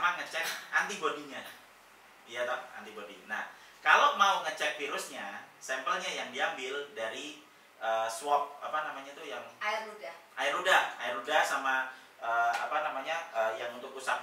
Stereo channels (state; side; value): identical; both; correlation 1.00